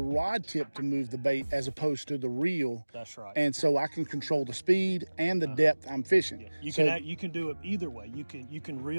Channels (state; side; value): inverted; both; correlation -1.00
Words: rod tip to move the bait as opposed to the reel. That's right. And so I can control the speed and the depth I'm fishing. Yeah. You can do it either way. You can